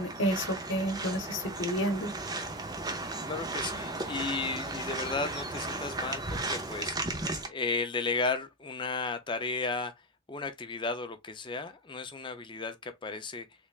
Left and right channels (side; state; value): both; normal; correlation 0.13